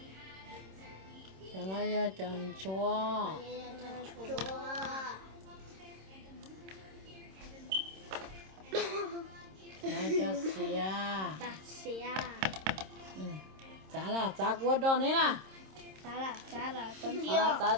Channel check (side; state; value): left; late; 26 ms